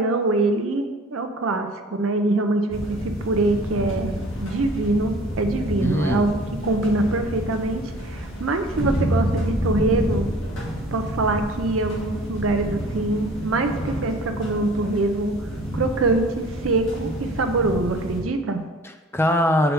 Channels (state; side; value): normal; both; correlation 0.47